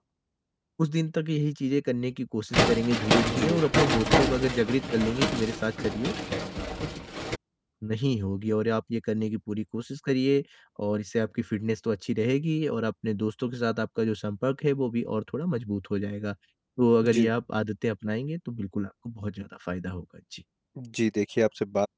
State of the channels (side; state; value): both; identical; correlation 1.00